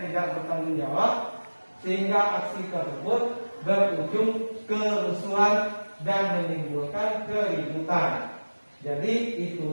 tidak bertanggung jawab, sehingga aksi tersebut berujung kerusuhan dan menimbulkan keributan. Jadi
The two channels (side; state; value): both; inverted; correlation -1.00